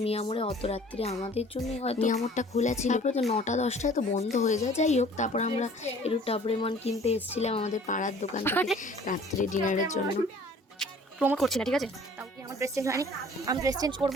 মিয়ামোড়ে। অত রাত্রে আমাদের জন্য হয়তো মিয়ামোড়টা খোলা ছিল, তারপরে তো 9টা-10টায় তো বন্ধ হয়ে যায়। যাই হোক, তারপর আমরা একটু টাবরেমন কিনতে এসেছিলাম আমাদের পাড়ার দোকান থেকে রাত্রে ডিনারের জন্য। প্রমোট করছি না, ঠিক আছে? তাও কি আমার ড্রেস চেঞ্জ হয়নি? আমি ড্রেস চেঞ্জ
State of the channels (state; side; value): normal; both; correlation 0.51